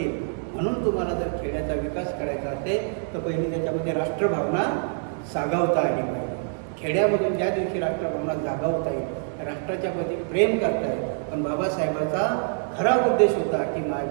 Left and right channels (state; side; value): silent; left; digital silence